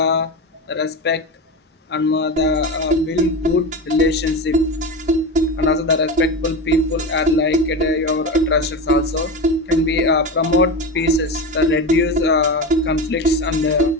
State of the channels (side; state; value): both; normal; correlation 0.21